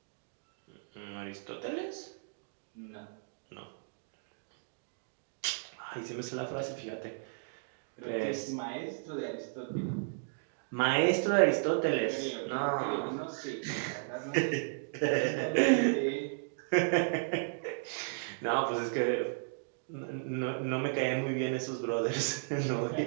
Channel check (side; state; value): left; silent; digital silence